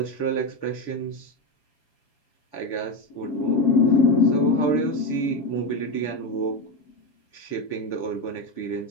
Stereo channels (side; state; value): right; late; 6.9 ms